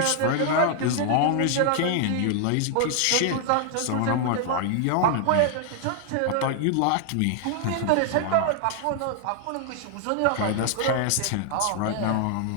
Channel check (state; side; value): different; both; correlation 0.00